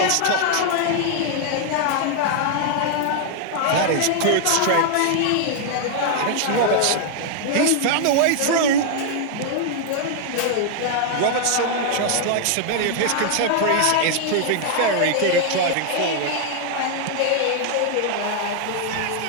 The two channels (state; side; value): different; both; correlation 0.00